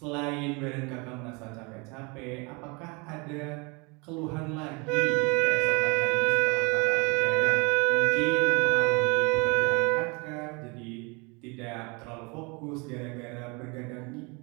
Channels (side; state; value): left; quieter; 29.3 dB